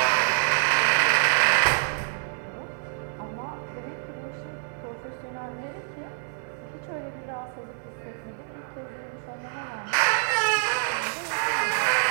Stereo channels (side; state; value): left; silent; 60 dB below the other